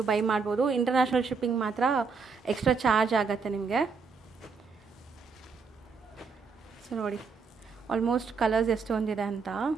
ಬೈ ಮಾಡ್ಬೋದು. ಇಂಟರ್ನ್ಯಾಷನಲ್ ಶಿಪ್ಪಿಂಗ್ ಮಾತ್ರ ಎಕ್ಸ್ಟ್ರಾ ಚಾರ್ಜ್ ಆಗುತ್ತೆ ನಿಮಗೆ. ಸೊ ನೋಡಿ ಆಲ್ಮೋಸ್ಟ್ ಕಲರ್ಸ್ ಎಷ್ಟೊಂದಿದೆ ಅಂತ.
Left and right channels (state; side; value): quieter; left; 5.1 dB